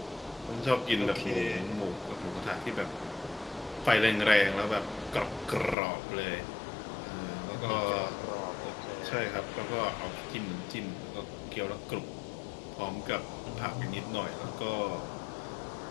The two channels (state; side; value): drops out; right; at 5.8 s